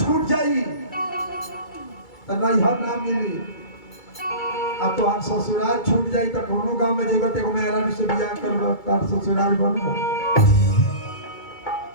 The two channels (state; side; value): late; right; 2.3 ms